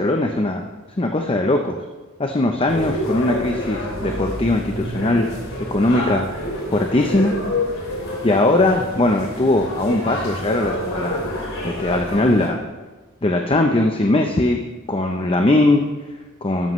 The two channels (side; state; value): both; normal; correlation 0.57